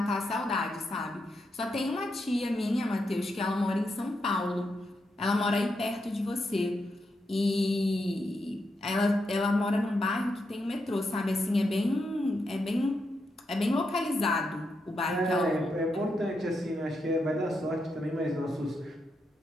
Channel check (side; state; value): both; normal; correlation 0.83